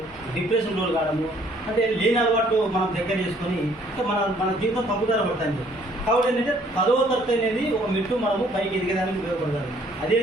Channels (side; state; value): both; normal; correlation 0.62